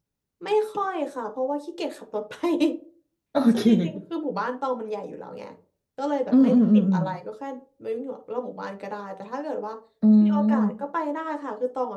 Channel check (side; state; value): both; identical; correlation 1.00